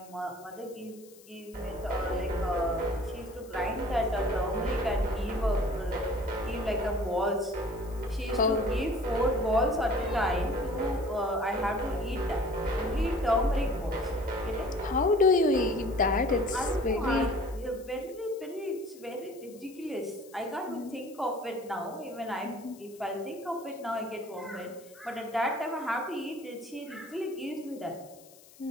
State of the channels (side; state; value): left; noise; hiss, 23 dB below the sound